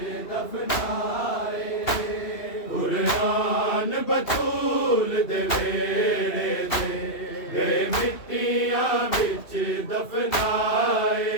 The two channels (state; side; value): late; right; 2.7 ms